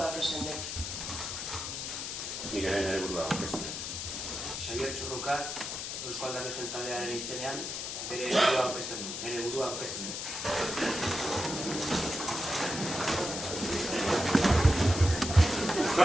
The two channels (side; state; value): left; noise; hiss, 5 dB below the sound